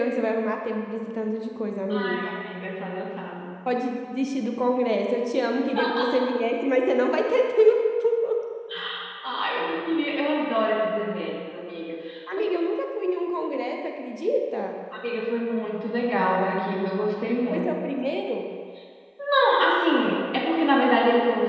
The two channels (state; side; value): identical; both; correlation 1.00